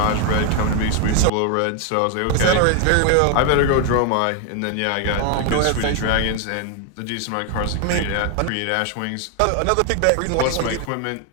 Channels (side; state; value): both; different; correlation 0.01